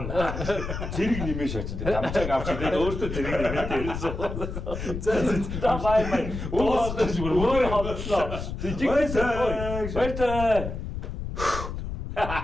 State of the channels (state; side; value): noise; left; rumble, 6 dB below the sound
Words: Зэрэг нэмээ шаач. Дамжааг авч тэгээд өөртөө зэрэг нэмээ дээрсэн. За Бай. Өөр хотлоо. Жигтэй. Баяртай.